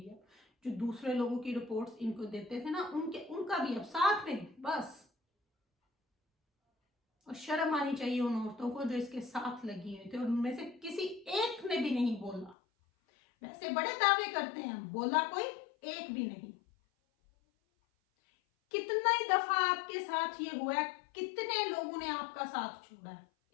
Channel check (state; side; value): drops out; right; at 12.6 s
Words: अब। जो दूसरे लोगों की रिपोर्ट्स इनको देते थे ना, उनका भी अब साथ में बस। और शर्म आनी चाहिए उन औरतों को जो इसके साथ लगी हुई थी, और उनमें से किसी एक ने भी नहीं बोला। वैसे बड़े दावे करते हैं, बोला कोई एक भी नहीं। कितना ही दफा आपके साथ ये हुआ है, कितने लोगों ने आपका साथ छोड़ा है?